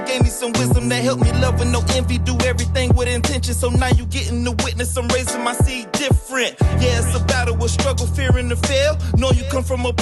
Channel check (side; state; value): both; identical; correlation 1.00